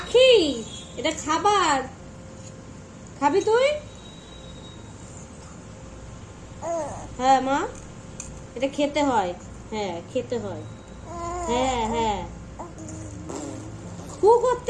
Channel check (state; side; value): identical; both; correlation 1.00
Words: এটা খাবার, খাবি তুই? হ্যাঁ মা, এটা খেতে হয়, হ্যাঁ খেতে হয়। হ্যাঁ হ্যাঁ, হু